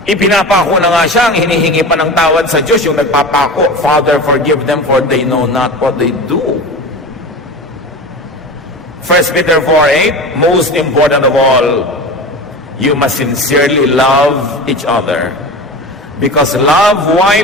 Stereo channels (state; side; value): normal; both; correlation 0.31